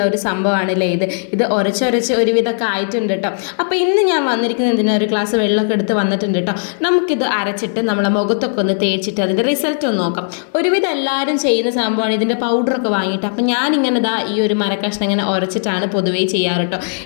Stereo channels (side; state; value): right; silent; 56 dB below the other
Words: ഒരു സംഭവമാണല്ലേ ഇത് ഉരച്ചൊരച്ച് ഒരുവിധമൊക്കെ ആയിട്ടുണ്ട് കേട്ടോ. അപ്പോൾ ഇന്ന് ഞാൻ വന്നിരിക്കുന്നത് എന്തിനാ, ഒരു ഗ്ലാസ് വെള്ളമൊക്കെ എടുത്ത് വന്നിട്ടുണ്ട് കേട്ടോ. നമുക്കിത് അരച്ചിട്ട് നമ്മളെ മുഖത്തൊക്കെ ഒന്ന് തേച്ചിട്ട് അതിൻ്റെ റിസൾട്ട് ഒന്ന് നോക്കാം. ഒരുവിധം എല്ലാവരും ചെയ്യുന്ന സംഭവമാണ് ഇതിൻ്റെ പൗഡറൊക്കെ വാങ്ങിയിട്ട്. അപ്പോൾ ഞാനിങ്ങനെ ഇതാ ഈ ഒരു മരക്കഷ്ണം ഇങ്ങനെ ഉരച്ചിട്ടാണ് പൊതുവേ ചെയ്യാറ് കേട്ടോ.